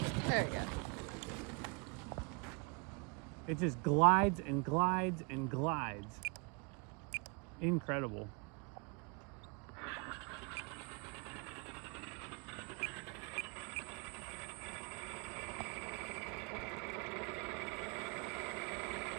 There we go. It just glides and glides and glides. Incredible.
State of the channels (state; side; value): quieter; left; 32.9 dB